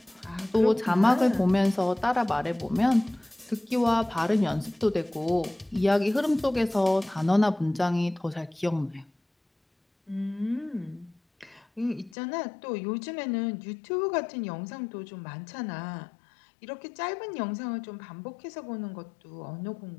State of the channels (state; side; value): drops out; right; at 12.2 s